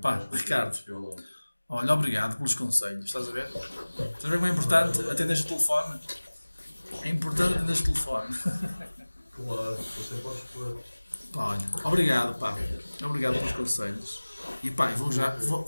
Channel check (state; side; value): inverted; both; correlation -1.00